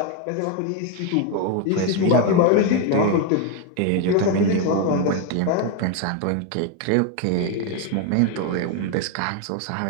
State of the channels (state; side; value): different; both; correlation 0.01